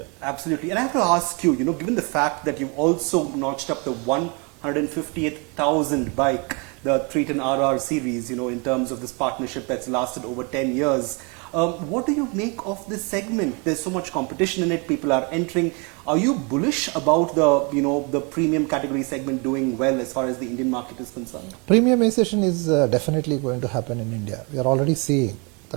Absolutely. And I have to ask you, given the fact that you've also notched up the 158,000 bike, the 310 RR series, in terms of this partnership that's lasted over 10 years. What do you make of this segment? There's so much competition in it. People are entering. Are you bullish about the premium category segment doing well as far as the Indian market is concerned? Premiumization is definitely going to happen in India. We are already seeing the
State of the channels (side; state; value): left; quieter; 32.1 dB